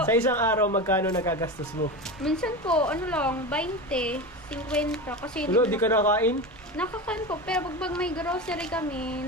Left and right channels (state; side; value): normal; both; correlation 0.24